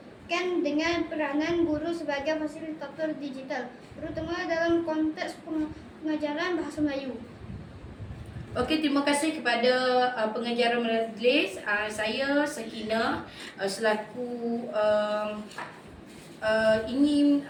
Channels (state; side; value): identical; both; correlation 1.00